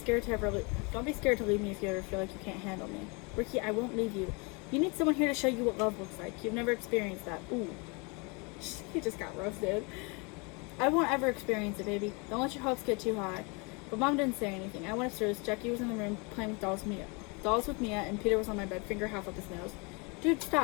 to leave me if you ever feel like you can't handle me. Ricky, I won't leave you. You need someone here to show you what love looks like. You've never experienced that. Ooh. He just got roasted. I won't ever experience it, baby. Don't let your hopes get too high. But Mom didn't say anything. I went upstairs. Jackie was in the room playing with dolls with Mia, and Peter was on my bed, finger half up his nose. Dude,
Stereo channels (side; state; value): right; quieter; 30.5 dB